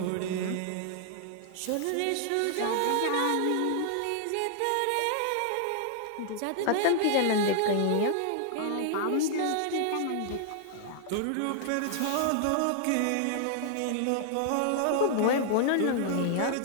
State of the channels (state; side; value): different; both; correlation -0.01